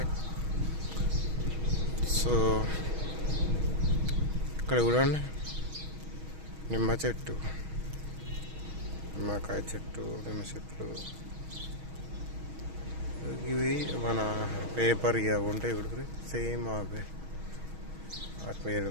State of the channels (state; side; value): late; left; 6.3 ms